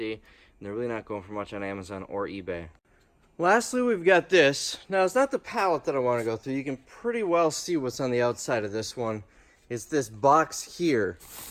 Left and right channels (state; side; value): identical; both; correlation 1.00